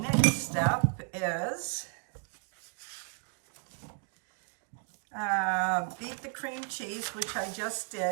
step is beat the cream cheese, which I just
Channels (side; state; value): left; quieter; 39.3 dB